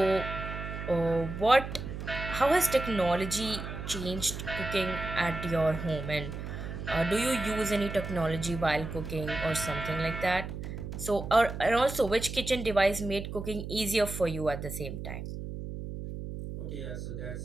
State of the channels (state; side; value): noise; right; hum, 7 dB below the sound